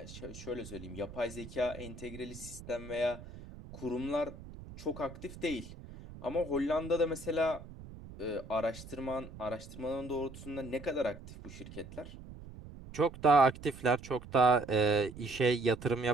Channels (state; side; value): noise; right; rumble, 15 dB below the sound